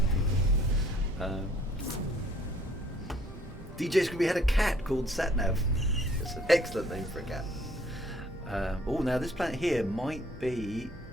DJ Scooby had a cat called Satnav. It's an excellent name for a cat. Oh, now this planet here might be...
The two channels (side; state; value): both; normal; correlation 0.61